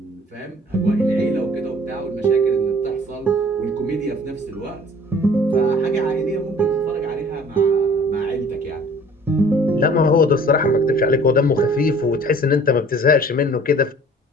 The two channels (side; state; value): both; normal; correlation 0.51